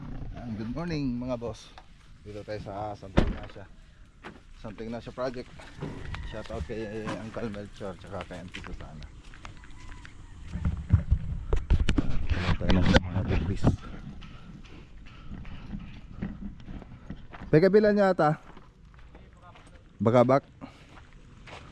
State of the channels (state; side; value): identical; both; correlation 1.00